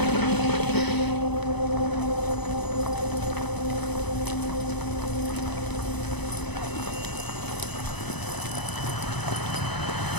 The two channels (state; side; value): late; right; 0.99 ms